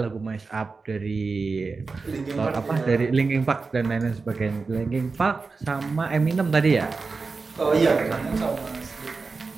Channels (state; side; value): quieter; left; 4.3 dB